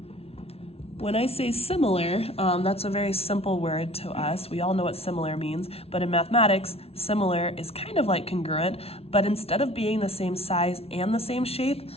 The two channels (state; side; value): late; right; 0.29 ms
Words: When I say similar, that's a very simple word to us. We all know what similar means, but in mathematics, similar is kind of like congruent, but instead of being the same size and the same shape,